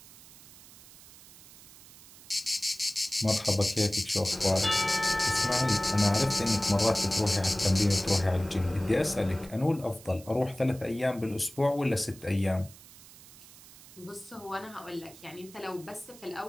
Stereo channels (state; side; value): noise; right; hiss, 20 dB below the sound